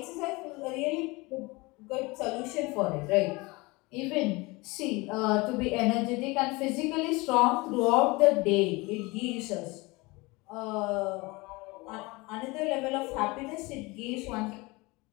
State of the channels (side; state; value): right; quieter; 24.2 dB